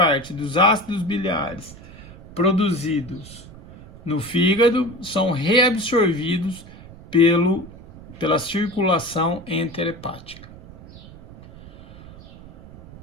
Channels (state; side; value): noise; right; rumble, 18 dB below the sound